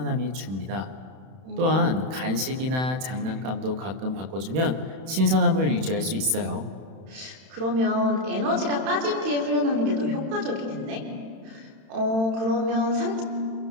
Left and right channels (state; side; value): late; left; 31 ms